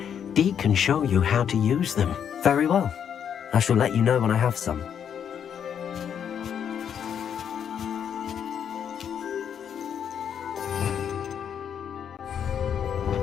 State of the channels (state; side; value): quieter; right; 8.4 dB